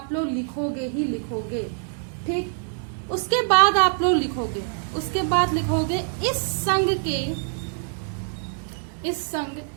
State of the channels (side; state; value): left; silent; 62 dB below the other